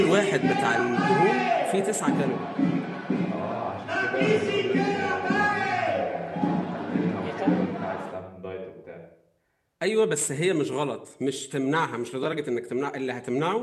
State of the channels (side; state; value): both; identical; correlation 1.00